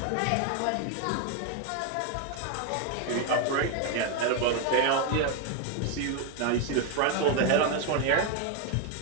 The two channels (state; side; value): different; both; correlation 0.01